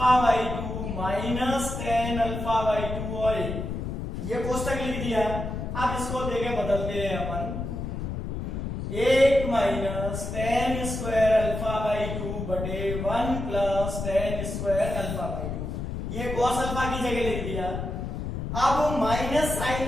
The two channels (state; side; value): noise; left; rumble, 4 dB below the sound